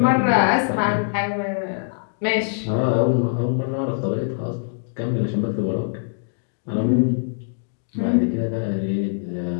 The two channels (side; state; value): right; silent; digital silence